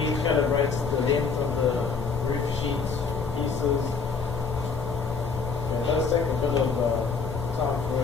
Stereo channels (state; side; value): quieter; right; 5.1 dB